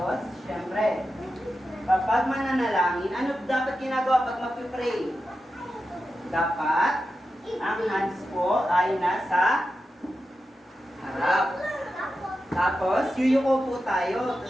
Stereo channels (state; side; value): normal; both; correlation 0.91